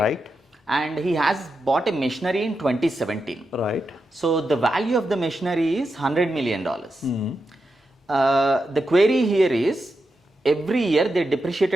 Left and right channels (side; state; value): both; normal; correlation 0.88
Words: And he has bought a machinery in 2017. Right. So the value of the machinery is $100 million. The query here is, every year they